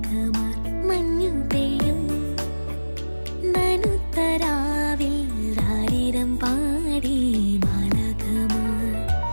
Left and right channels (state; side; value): inverted; both; correlation -1.00